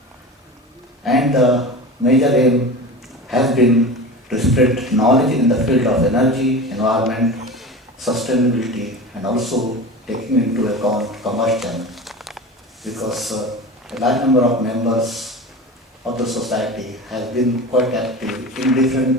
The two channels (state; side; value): normal; both; correlation 0.31